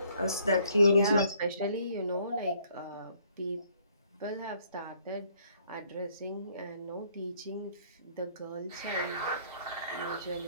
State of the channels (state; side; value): inverted; both; correlation -0.64